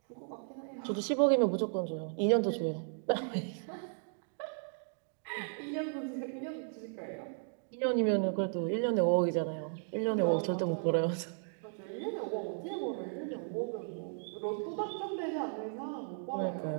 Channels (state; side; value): silent; left; digital silence